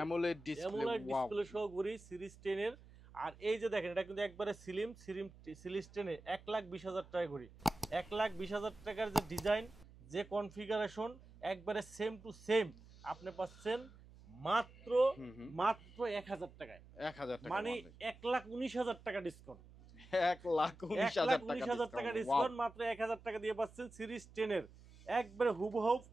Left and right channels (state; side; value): noise; right; hum, 21 dB below the sound